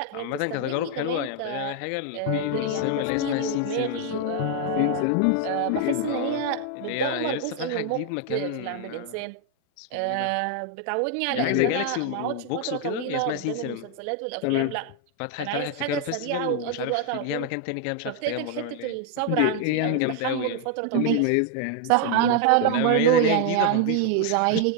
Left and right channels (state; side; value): different; both; correlation 0.00